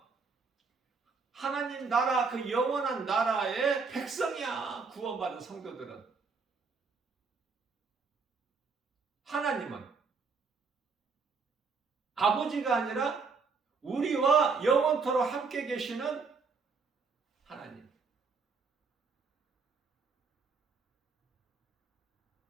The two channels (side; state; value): left; quieter; 4.8 dB